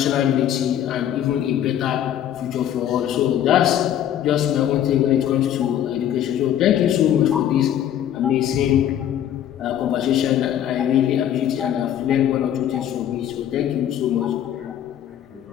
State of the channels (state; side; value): quieter; right; 10.7 dB